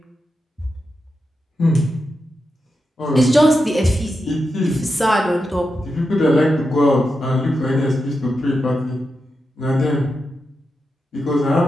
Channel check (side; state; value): both; normal; correlation 0.88